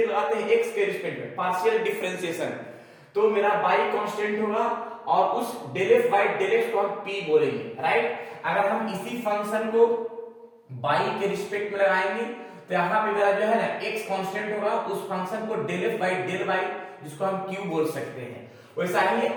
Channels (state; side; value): identical; both; correlation 1.00